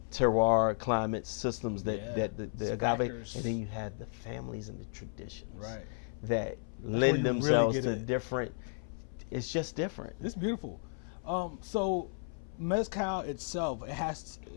terroir, climate systems that the agave, and then you have the families and the traditions that lend themselves to different. It's just different. It's beautiful. So mezcal itself, it has to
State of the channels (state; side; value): silent; right; 55 dB below the other